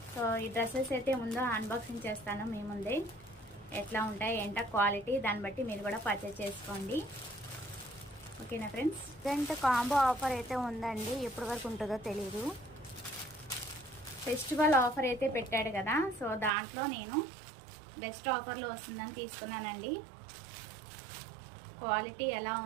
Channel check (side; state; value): left; drops out; at 16.5 s